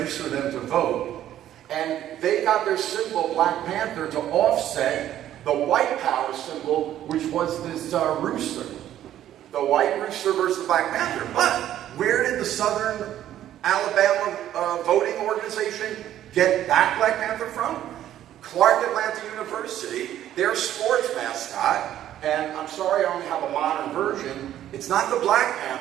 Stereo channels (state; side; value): quieter; left; 11.9 dB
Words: them to vote. And they got their symbol, Black Panther, to offset the white power symbol, which was this rooster. The white rooster versus the Black Panther. But where did the Southern Alabama voting organization get that Black Panther from? Clark Atlanta University, their sports mascot, and I'm sorry I only have a modern version, it's not the Black